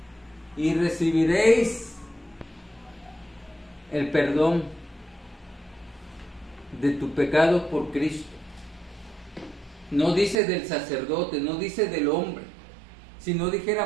Y recibiréis el perdón de tus pecados por Cristo. No dice del sacerdote, no dice del hombre. Si no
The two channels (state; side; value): drops out; left; at 10.4 s